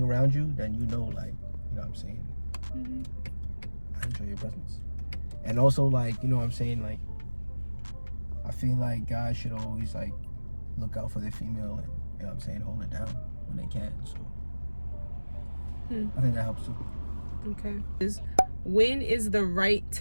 around you, then you know, like, you know what I'm saying? I enjoy your presence. And also, like, you know what I'm saying? Like, I feel like guys should always, like, look out for their female and, you know what I'm saying, hold it down when they can. So I think that helps too. Okay. When is the right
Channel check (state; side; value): inverted; both; correlation -1.00